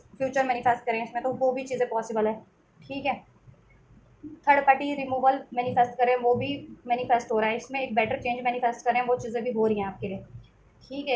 फ्यूचर मैनिफेस्ट करें, इसमें तो वो भी चीज़ें पॉसिबल है, ठीक है। थर्ड पार्टी रिमूवल मैनिफेस्ट करें, वो भी मैनिफेस्ट हो रहा है इसमें। एक बेटर चेंज मैनिफेस्ट करें, वो चीज़ें भी हो रही हैं आपके लिए, ठीक है।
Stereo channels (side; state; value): both; identical; correlation 1.00